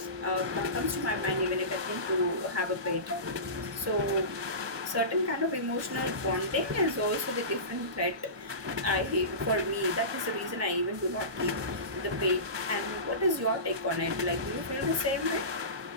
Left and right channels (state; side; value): late; left; 1.2 ms